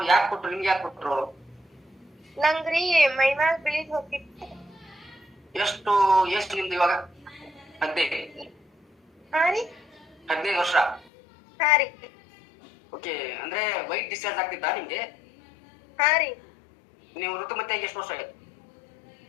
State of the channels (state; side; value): drops out; right; at 11.1 s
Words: ಯಾಕೆ ಕೊಟ್ರು ನಿಮ್ಗೆ? ಯಾಕೆ ಕೊಟ್ರು? ನಂಗ್ರಿ ಮೈಮ್ಯಾಗ ಬಿಳಿದ್ ಹೋಗಿತ್ತು. ಎಷ್ಟು ನಿಮ್ದು ಇವಾಗ? 15. ಹಾ ರೀ. 15 ವರ್ಷ. ಹಾ ರೀ. ಓಕೆ, ಅಂದ್ರೆ ವೈಟ್ ಡಿಸ್ಚಾರ್ಜ್ ಆಗ್ತಿದ್ದ ನಿಮ್ಗೆ? ಹಾ ರೀ. ನೀವು ಋತುಮತಿ ಆಗಿ ಎಷ್ಟು ವರ್ಷ ಆಯ್ತು?